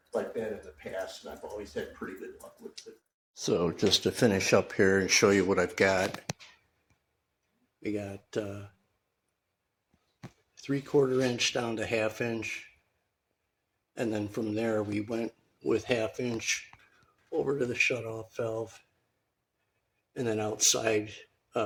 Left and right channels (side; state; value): both; identical; correlation 1.00